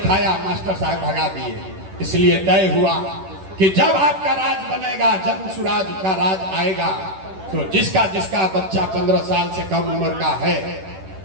मास्टर साहब भगा दिए। इसलिए तय हुआ कि जब आपका राज बनेगा, जन सुराज का राज आएगा, तो जिसका जिसका बच्चा 15 साल से कम उम्र का है,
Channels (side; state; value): left; late; 10 ms